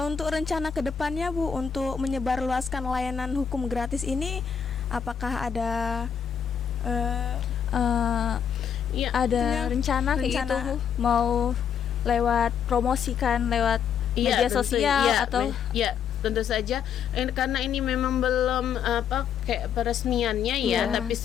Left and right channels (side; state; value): right; quieter; 7.7 dB